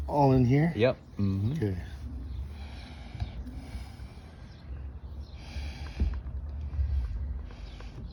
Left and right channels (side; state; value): both; identical; correlation 1.00